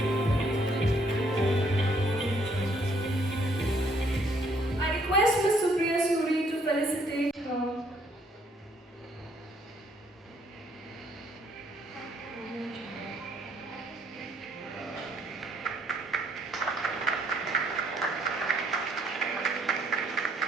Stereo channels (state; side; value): normal; both; correlation 0.67